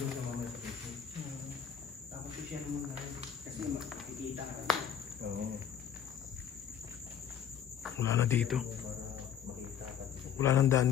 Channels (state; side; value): quieter; right; 8.7 dB